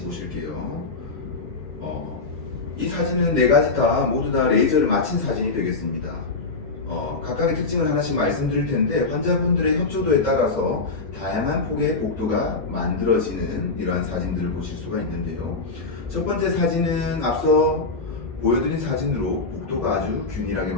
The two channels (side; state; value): right; quieter; 3.8 dB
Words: 보실게요. 이 사진은 네 가지 모두 다 레이저를 마친 사진이 되겠습니다. 각각의 특징을 하나씩 말씀드릴 텐데 환자분들의 협조도에 따라서 다양한 폭의 복도가 만들어지는 이러한 사진들을 보실 수가 있는데요. 첫 번째 사진은 앞서 보여드린 사진으로 복도가 아주 균일하게